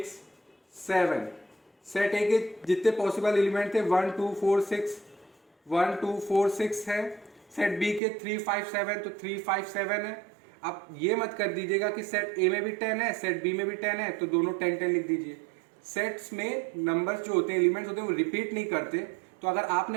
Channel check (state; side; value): drops out; left; at 8.0 s